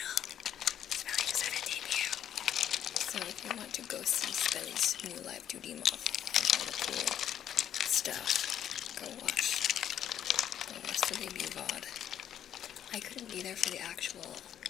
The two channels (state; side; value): quieter; right; 10.0 dB